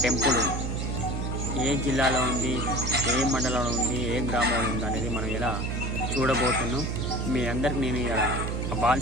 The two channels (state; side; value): noise; right; hum, 2 dB below the sound